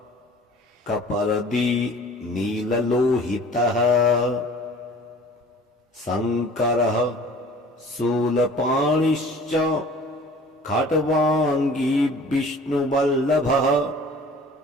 कपर्दी नीललोहितः शङ्करः शूलपाणिश्च खट्वाङ्गी विष्णुवल्लभः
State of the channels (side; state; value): both; normal; correlation 0.47